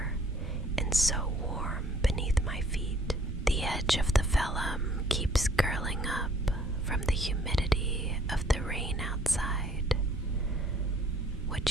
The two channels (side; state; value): both; normal; correlation 0.59